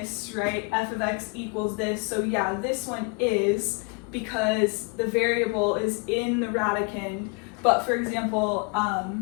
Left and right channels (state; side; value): quieter; right; 32.0 dB